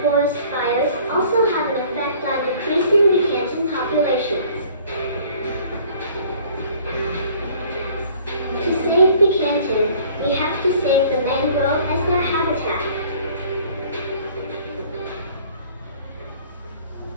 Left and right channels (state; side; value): inverted; both; correlation -0.53